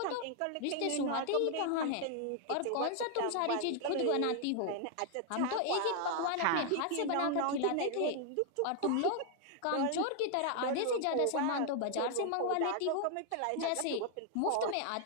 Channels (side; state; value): both; different; correlation 0.00